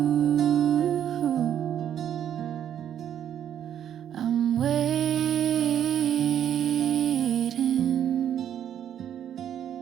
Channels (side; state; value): left; quieter; 9.9 dB